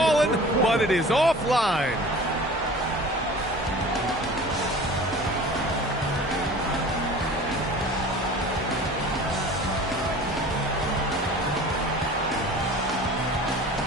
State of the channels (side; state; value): both; normal; correlation 0.42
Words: but it is offline.